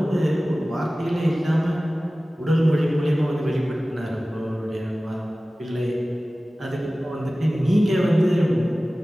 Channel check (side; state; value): both; normal; correlation 0.97